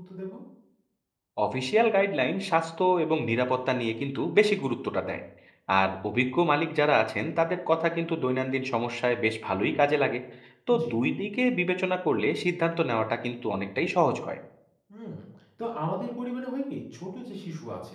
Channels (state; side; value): identical; both; correlation 1.00